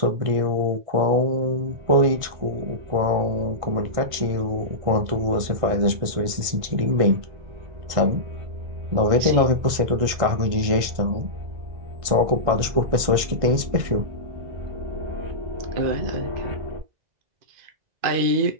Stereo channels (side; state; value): left; late; 1.6 ms